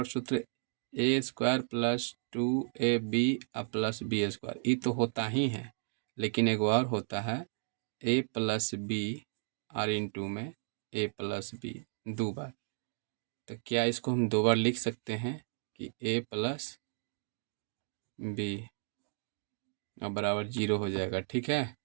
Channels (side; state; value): left; silent; digital silence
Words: सूत्र a² plus 2ab plus b²। ये तो होता ही है, लेकिन एक और होता है a प्लस बी और इंटू में a प्लस बी 2 बार। तो क्या इसको हम 2 बार लिख सकते हैं कि a प्लस बी अब बराबर 0 हो जाएगा, ठीक है।